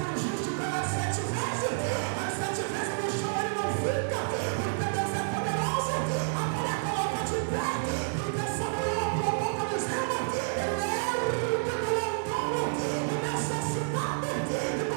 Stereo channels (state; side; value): silent; left; 58 dB below the other